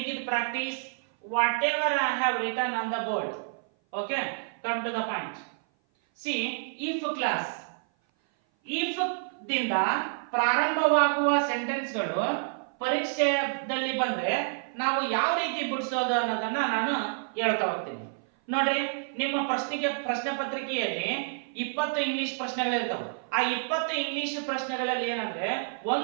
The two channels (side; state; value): left; silent; 56 dB below the other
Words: it practice whatever I have written on the board. Okay, come to the point. See, if class, if ದಿಂದ ಪ್ರಾರಂಭವಾಗುವ ಸೆಂಟೆನ್ಸ್ಗಳು ಪರೀಕ್ಷೆಯಲ್ಲಿ ಬಂದ್ರೆ ನಾವು ಯಾವ ರೀತಿ ಬಿಡಿಸೋದು ಅನ್ನೋದನ್ನ ನಾನು ಹೇಳ್ತಾ ಹೋಗ್ತೀನಿ. ನೋಡ್ರಿ, ನಿಮ್ಮ ಪ್ರಶ್ನೆ ಪತ್ರಿಕೆಯಲ್ಲಿ 20 ಇಂಗ್ಲಿಷ್ ಪ್ರಶ್ನೆಗಳಿರ್ತಾವೆ. ಆ 20 ಇಂಗ್ಲಿಷ್ ಪ್ರಶ್ನೆಗಳಲ್ಲಿ ಏನಂದ್ರೆ